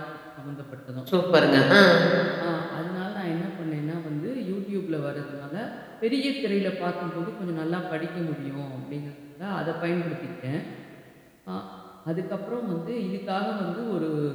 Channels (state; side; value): identical; both; correlation 1.00